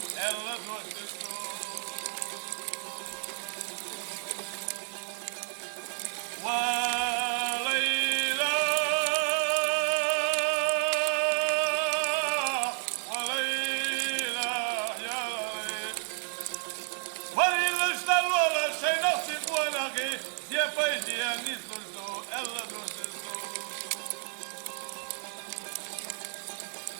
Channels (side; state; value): left; silent; 57 dB below the other